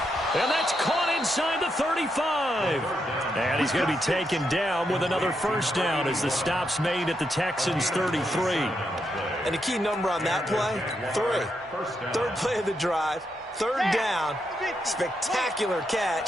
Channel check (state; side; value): normal; both; correlation 0.82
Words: And that's caught inside the 35. And he's going to be taken down with another 1st down as the stop's made at the Texans' 33. And the key number on that play, 3. 3rd play of the drive, 3rd down, spectacular